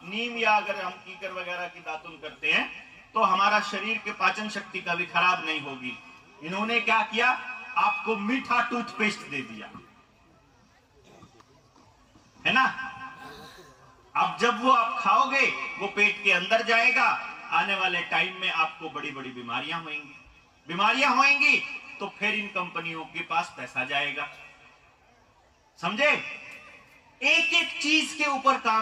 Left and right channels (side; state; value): both; identical; correlation 1.00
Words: नीम या अगर हम कीकर वगैरह की दातुन करते हैं तो हमारा शरीर के पाचन शक्ति का भी खराब नहीं होगी। इन्होंने क्या किया? आपको मीठा टूथपेस्ट दे दिया, है ना? अब जब वो आप खाओगे वो पेट के अंदर जाएगा, आने वाले टाइम में आपको बड़ी बड़ी बीमारियां होंगी तो फिर इन कंपनियों के पास पैसा जाएगा। समझे? एक एक चीज के ऊपर